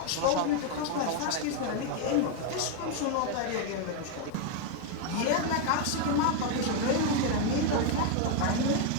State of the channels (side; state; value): both; different; correlation 0.01